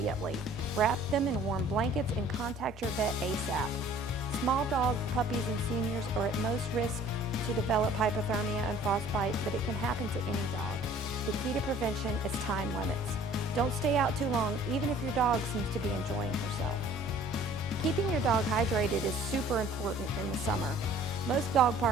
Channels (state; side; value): normal; both; correlation 0.52